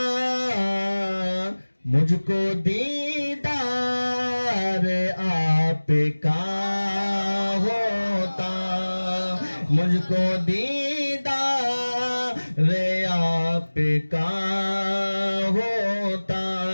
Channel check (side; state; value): both; inverted; correlation -1.00